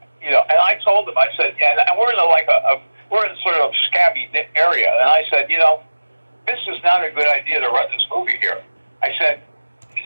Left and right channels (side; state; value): both; inverted; correlation -1.00